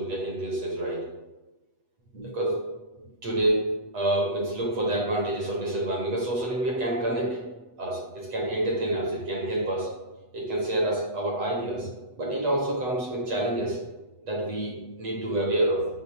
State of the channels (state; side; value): late; left; 8.1 ms